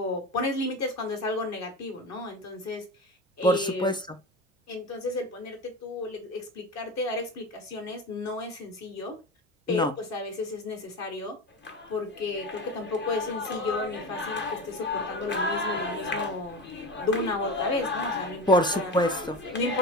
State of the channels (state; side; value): normal; both; correlation 0.26